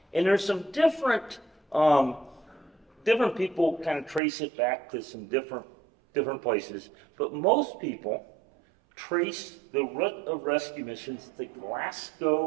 And there's some different people kind of trace it back to some different places, but most people trace the root of rescue missions to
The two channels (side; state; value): left; drops out; at 4.2 s